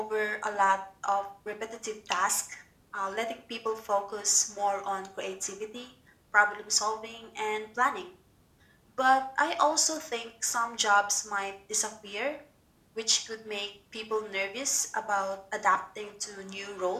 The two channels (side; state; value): both; identical; correlation 1.00